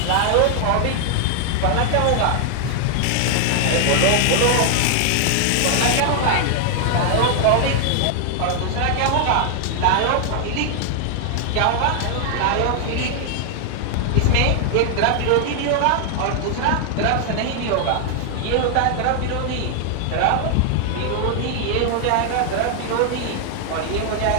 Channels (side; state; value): both; different; correlation 0.00